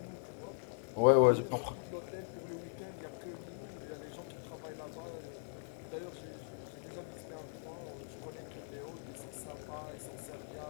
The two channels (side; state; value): right; silent; 51 dB below the other